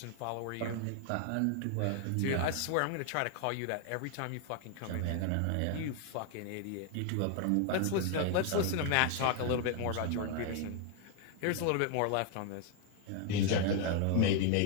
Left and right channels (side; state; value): both; different; correlation 0.01